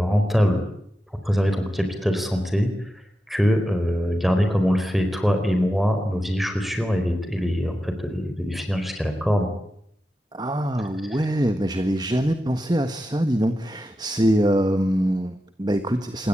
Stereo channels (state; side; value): normal; both; correlation 0.90